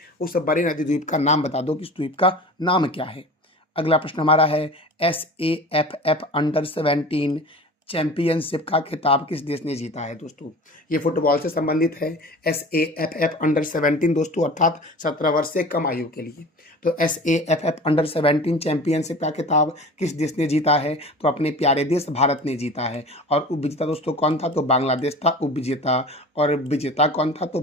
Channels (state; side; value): normal; both; correlation 0.38